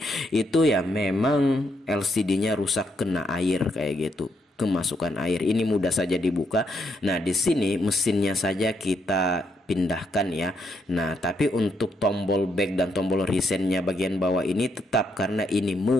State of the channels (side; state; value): both; normal; correlation 0.76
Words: itu ya memang LCD-nya rusak kena air kayak gitu, kemasukan air. Ini mudah saja dibuka. Nah, di sini mesinnya saja kita pindahkan ya. Nah, tapi untuk tombol back dan tombol resetnya bagian bawah ini tetap, karena ini